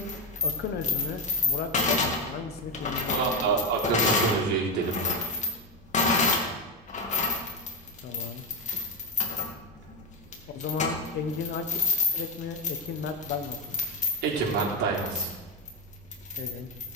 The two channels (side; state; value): both; normal; correlation 0.10